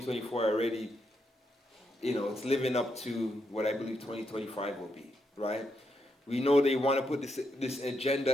already, you know, it's living up to what I believe 2025 will be, right? We know they want to put this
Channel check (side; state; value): both; normal; correlation 0.81